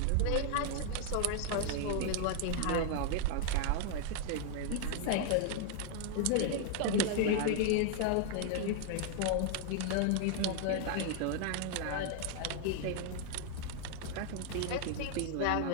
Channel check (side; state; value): both; different; correlation 0.00